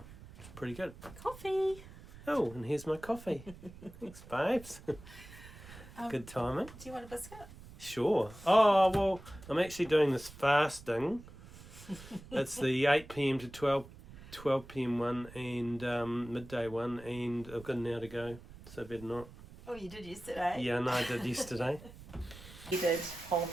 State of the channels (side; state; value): right; noise; rumble, 17 dB below the sound